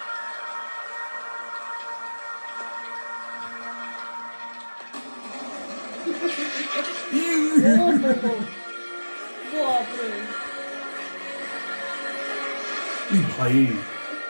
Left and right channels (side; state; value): both; inverted; correlation -1.00